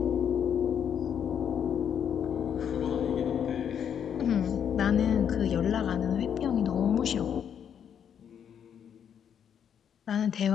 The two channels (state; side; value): quieter; right; 8.4 dB